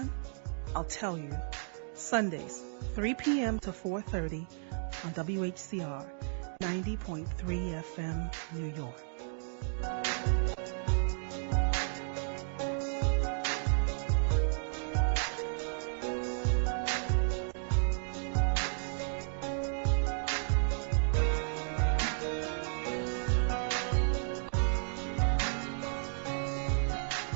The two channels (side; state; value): left; silent; digital silence